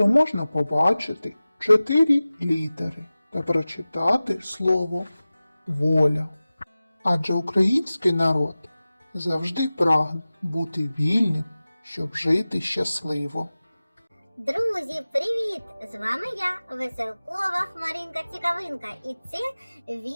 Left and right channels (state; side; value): inverted; both; correlation -0.97